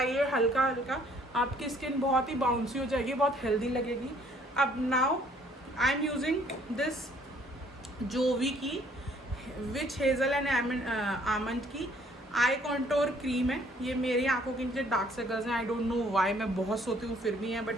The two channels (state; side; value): normal; both; correlation 0.61